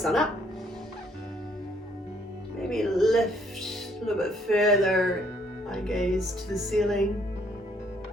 on up, maybe lift a little bit further, eye gaze to the ceiling,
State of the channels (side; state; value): both; normal; correlation 0.66